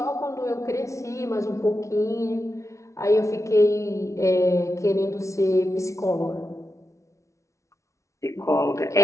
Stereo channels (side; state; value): right; late; 0.14 ms